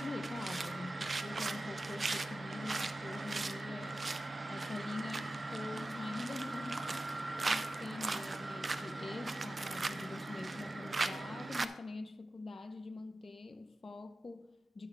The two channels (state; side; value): normal; both; correlation 0.94